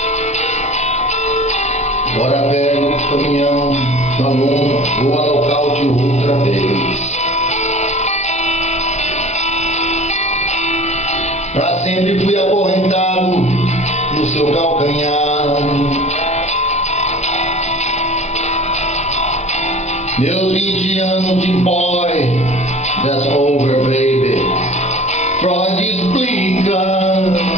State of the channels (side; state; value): both; normal; correlation 0.42